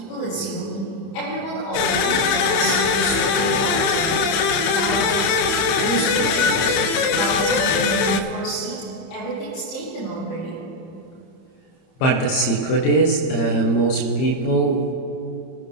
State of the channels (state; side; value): late; right; 30 ms